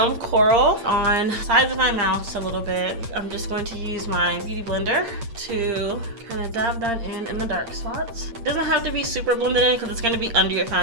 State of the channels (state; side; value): late; left; 8.7 ms